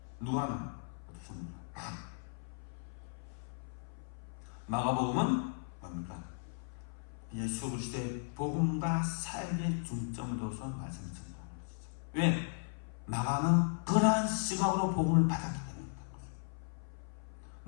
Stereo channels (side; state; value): right; silent; 53 dB below the other